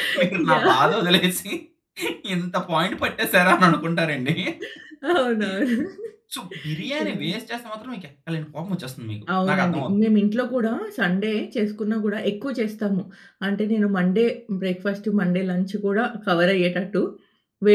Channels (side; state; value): both; identical; correlation 1.00